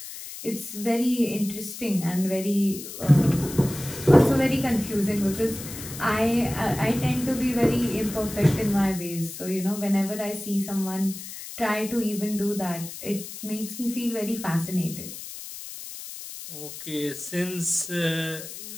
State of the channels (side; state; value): left; noise; hiss, 11 dB below the sound